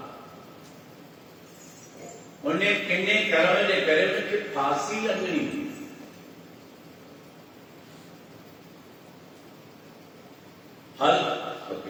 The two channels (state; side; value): identical; both; correlation 1.00